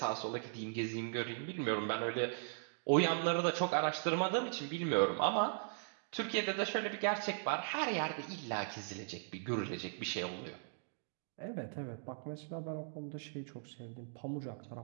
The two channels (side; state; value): left; silent; digital silence